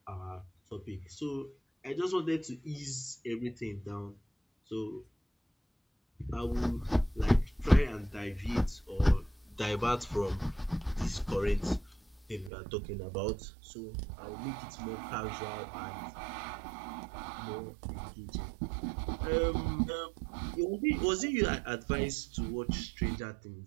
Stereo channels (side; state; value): left; drops out; at 12.5 s